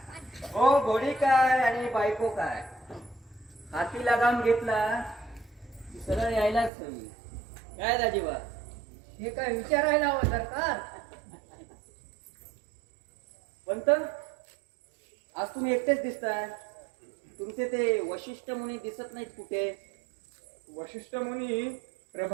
हो, घोडी काय आणि बायको काय, हाती लगाम घेतला की सरळ यायलाच हवी. काय दाजीबा? हे काय विचारायला हवं सरकार. पंत, आज तुम्ही एकटेच दिसताय. तुमचे ते वशिष्ठ मुनी दिसत नाहीत कुठे. वशिष्ठ मुनी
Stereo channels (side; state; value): left; drops out; at 6.7 s